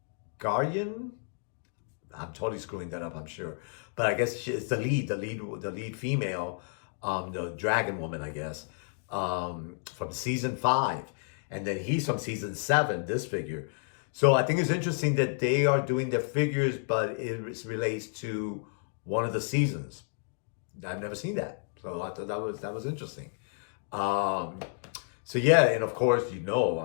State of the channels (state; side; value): silent; right; 57 dB below the other